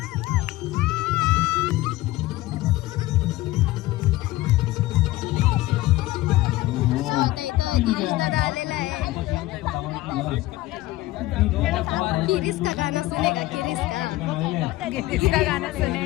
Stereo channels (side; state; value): right; quieter; 17.6 dB